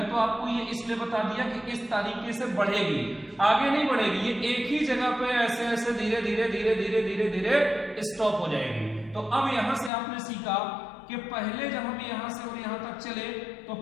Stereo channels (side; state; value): right; drops out; at 9.9 s